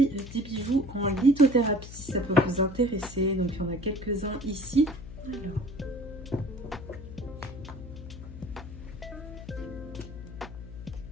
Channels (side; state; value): left; noise; hum, 12 dB below the sound